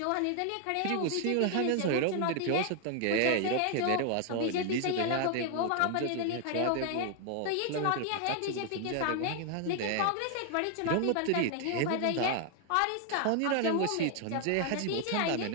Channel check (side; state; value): both; different; correlation 0.00